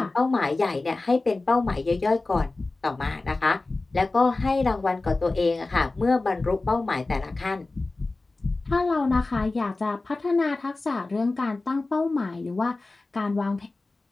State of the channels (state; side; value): quieter; right; 3.3 dB